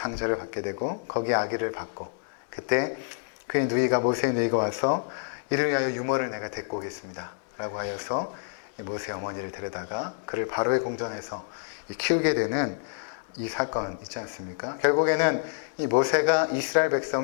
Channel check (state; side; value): silent; right; digital silence